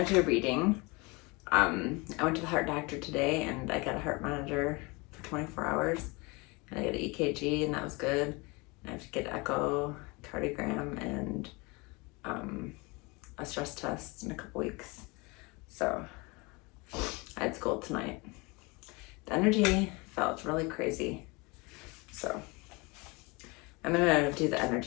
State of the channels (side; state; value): right; quieter; 26.7 dB